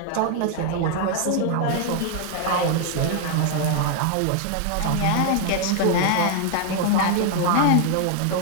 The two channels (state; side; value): different; both; correlation 0.00